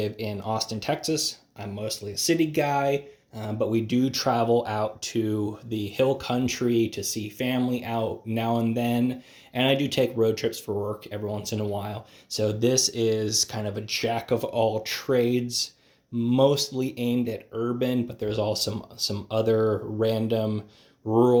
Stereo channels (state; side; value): identical; both; correlation 1.00